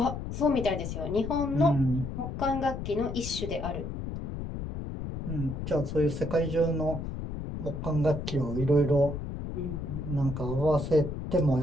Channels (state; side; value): noise; left; rumble, 6 dB below the sound